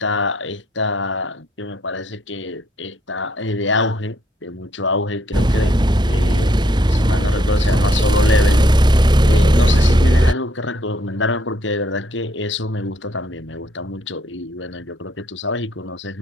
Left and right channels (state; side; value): normal; both; correlation 0.71